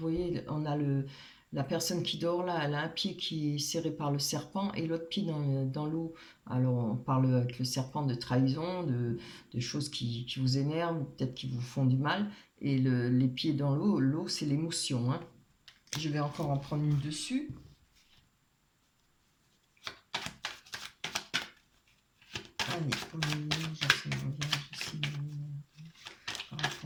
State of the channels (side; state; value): both; identical; correlation 1.00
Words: on a la personne qui dort là, elle a un pied qui est serré par le serpent et l'autre pied dans l'eau. Alors on parle avec le serpent de trahison, de choses qui vous énervent, peut-être qui vous font du mal. Et les pieds dans l'eau c'est l'émotion. Hein. Je vais encore en prendre une dessus. Allez, pour les vierges, ici, par